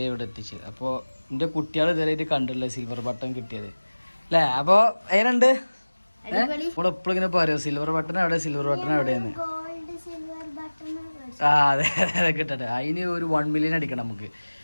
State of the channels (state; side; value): inverted; both; correlation -1.00